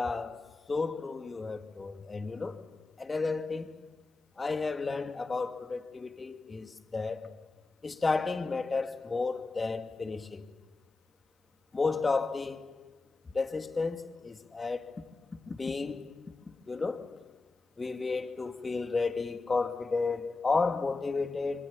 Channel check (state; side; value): quieter; right; 3.7 dB